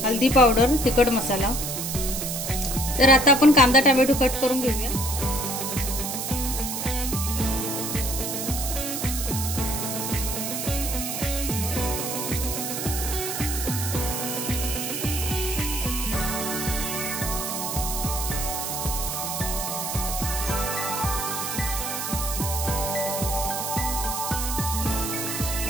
हळदी पावडर, तिखट मसाला। तर आता आपण कांदा टोमॅटो कट करून घेऊया।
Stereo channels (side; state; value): right; noise; hiss, 4 dB below the sound